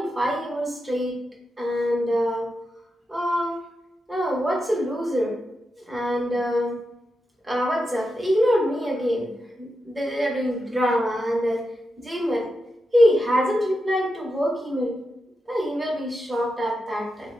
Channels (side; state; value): both; normal; correlation 0.88